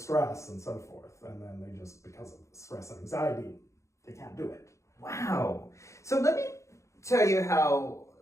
and so forth. And then they just, because of stress and anxiety, they can't do it. Wow. So let me tell you how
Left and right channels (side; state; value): right; late; 0.14 ms